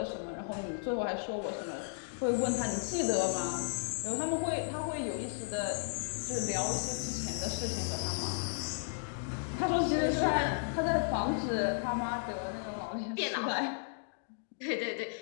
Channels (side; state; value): right; silent; digital silence